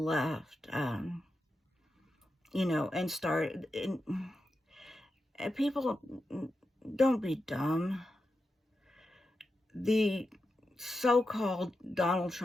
you know, and started. And people, don't be dumb. The so-called Donald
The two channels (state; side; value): normal; both; correlation 0.89